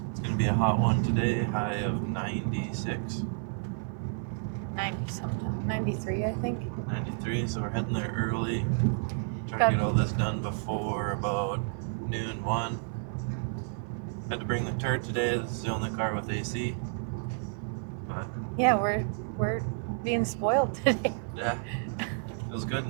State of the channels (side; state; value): left; silent; 57 dB below the other